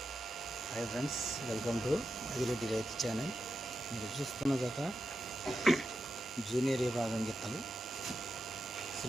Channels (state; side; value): normal; both; correlation 0.89